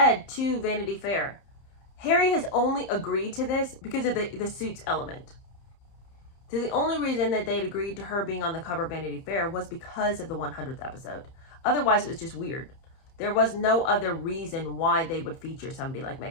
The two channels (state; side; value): late; right; 30 ms